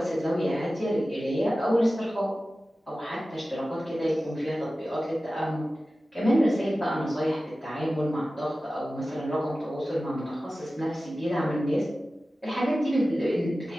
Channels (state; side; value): normal; both; correlation 0.95